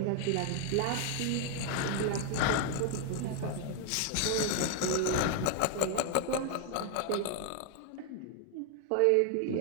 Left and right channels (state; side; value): different; both; correlation 0.00